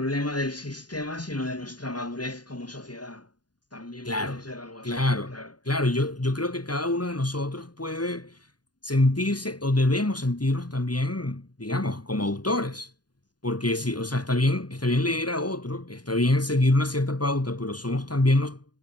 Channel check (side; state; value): right; late; 0.70 ms